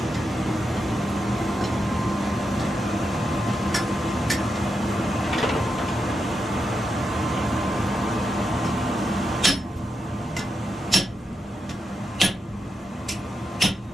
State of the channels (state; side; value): normal; both; correlation 0.86